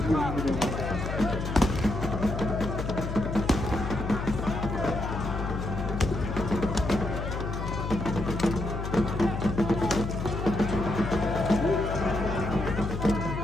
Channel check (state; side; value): noise; left; hum, 4 dB below the sound